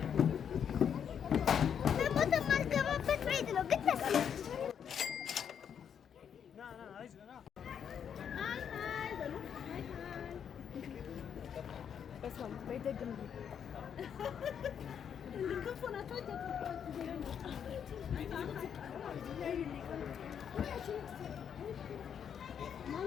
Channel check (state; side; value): quieter; right; 8.1 dB